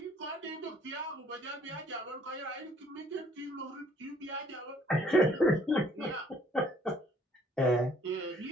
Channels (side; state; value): both; normal; correlation 0.61